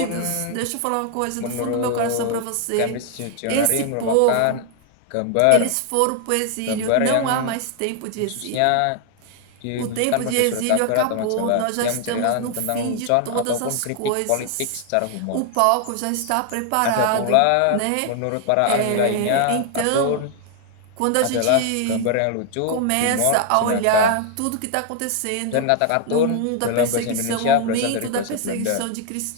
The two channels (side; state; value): both; different; correlation 0.00